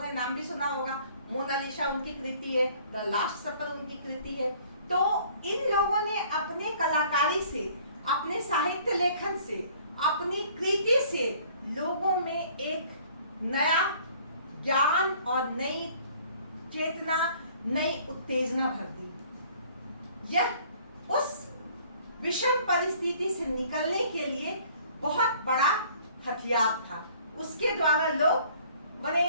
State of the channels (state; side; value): inverted; both; correlation -0.55